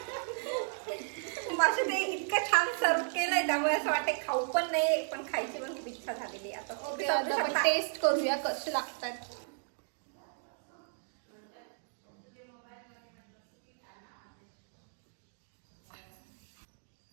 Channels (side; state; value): left; silent; digital silence